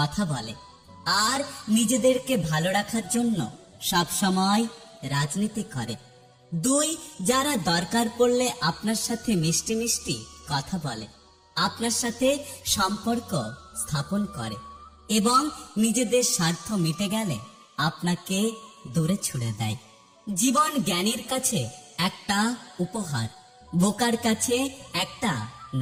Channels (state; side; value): identical; both; correlation 1.00